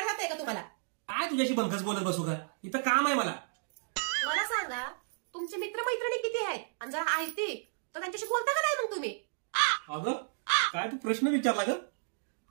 जातंय का तुम्हाला? काय तुझ्याशी बंकस बोलत बसू का? इथं काम आहे मला. मला सांगा, तुमचे मित्रमैत्रिणी किती आहेत? आणि जर आहेत तर त्यांच्याशी बोलता का नाही मग तुम्ही? अगं काय तू प्रश्न विचारला ग?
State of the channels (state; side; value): silent; left; digital silence